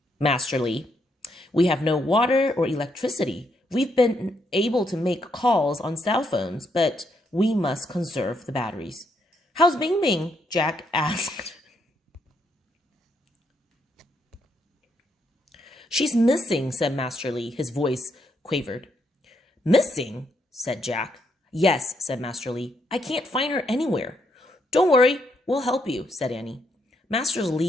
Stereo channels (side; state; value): both; normal; correlation 0.76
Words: Master Li. We have no water or electricity. We've been able to make calls on cell phones, but we must conserve the batteries. How's Bing Bing? Jack asked. She's missing, said Master Li. His voice quavered. Missing? Said Jack. Yes, said Master Li. I can't find her anywhere. Don't worry, we'll help you, said Annie. Master